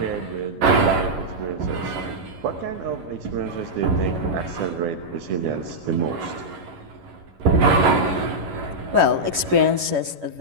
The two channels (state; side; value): late; left; 11 ms